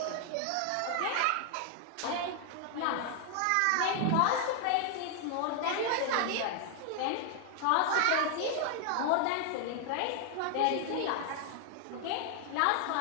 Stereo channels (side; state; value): both; different; correlation 0.00